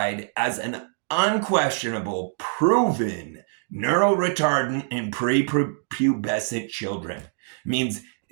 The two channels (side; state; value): left; silent; digital silence